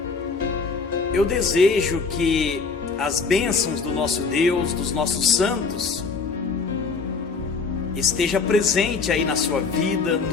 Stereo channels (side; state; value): right; quieter; 4.7 dB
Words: Eu desejo que as bênçãos do nosso Deus, dos nossos santos, esteja presente aí na sua vida,